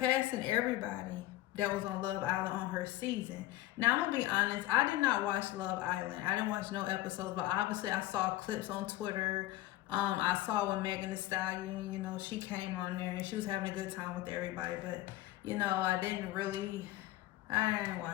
everybody that was on Love Island on her season. Now, I'm gonna be honest, I did not watch Love Island. I didn't watch no episodes, but obviously I saw clips on Twitter. I saw when Megan Thee Stallion, she came on there and she was having a good time with everybody. But, I didn't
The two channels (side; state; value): right; quieter; 15.9 dB